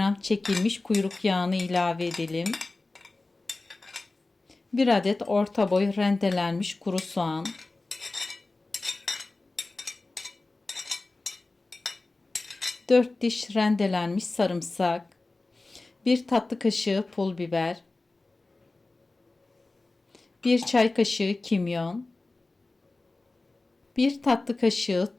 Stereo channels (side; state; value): right; quieter; 3.2 dB